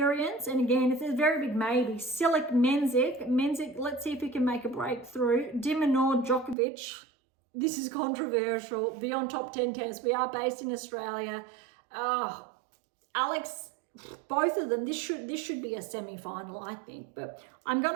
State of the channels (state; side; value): drops out; left; at 6.6 s